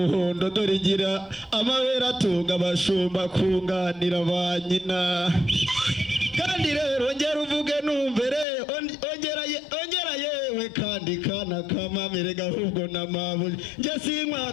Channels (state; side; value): drops out; right; at 8.5 s